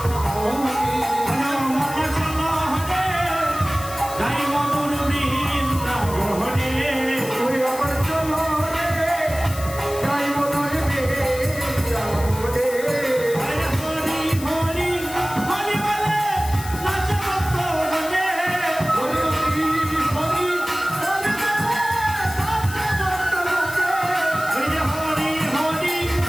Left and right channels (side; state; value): left; noise; hiss, 13 dB below the sound